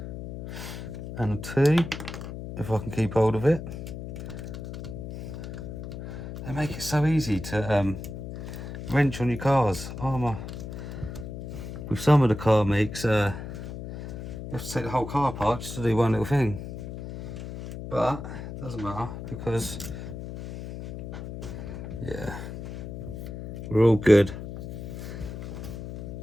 and 2, if I can keep hold of it. They make it so easy to wrench on your cars. Arrma, with some of the car makes, you have to take the whole car apart just to do one little thing. But it doesn't matter, because yeah, we're all good.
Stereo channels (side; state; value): left; noise; hum, 9 dB below the sound